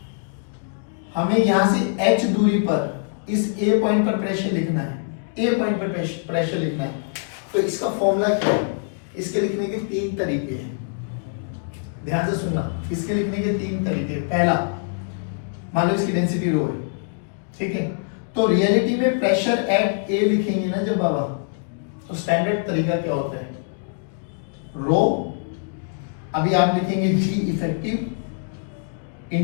हमें यहां से h दूरी पर इस a पॉइंट पर प्रेशर लिखना है, a पॉइंट पर प्रेशर लिखना है। तो इसका फॉर्मूला क्या है? इसके लिखने के 3 तरीके हैं, ध्यान से सुनना। इसके लिखने के 3 तरीके। पहला, मान लो इसकी डेंसिटी रो है, ठीक है, तो रियलिटी में प्रेशर एट a लिखेंगे ना जब बाबा, तो स्टैंडर्ड तरीका क्या होता है? रो, अभी आप लिखेंगे G effective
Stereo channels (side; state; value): right; silent; digital silence